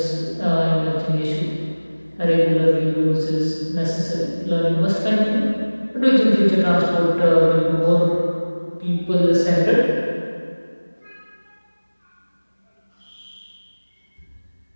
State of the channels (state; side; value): inverted; both; correlation -1.00